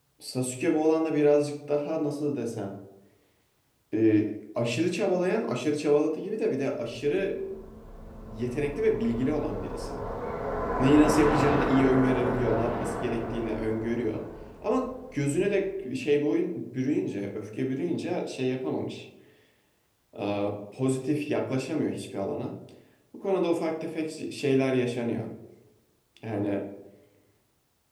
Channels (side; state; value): both; identical; correlation 1.00